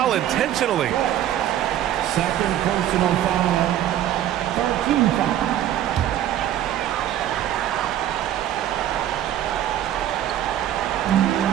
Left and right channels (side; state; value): left; quieter; 11.8 dB